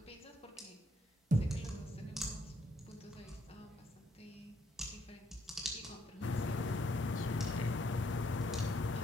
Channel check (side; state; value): both; normal; correlation 0.71